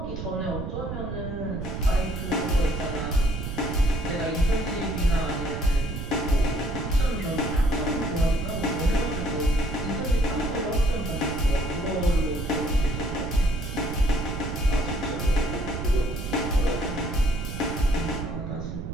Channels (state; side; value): noise; right; rumble, 6 dB below the sound